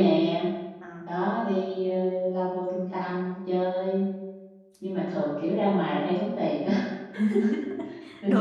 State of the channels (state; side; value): identical; both; correlation 1.00